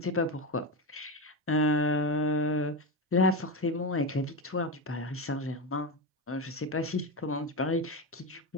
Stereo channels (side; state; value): both; normal; correlation 0.15